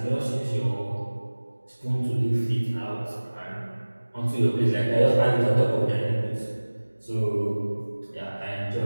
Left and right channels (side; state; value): both; inverted; correlation -1.00